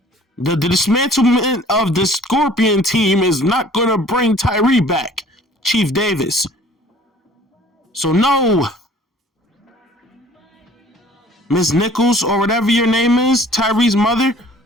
The dismantlement of the Scorpion team is not gonna bring Tyree back. Chief Davis. So no, Miss Nichols or whatever your name is, Tyre's mother,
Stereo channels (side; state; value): both; normal; correlation 0.52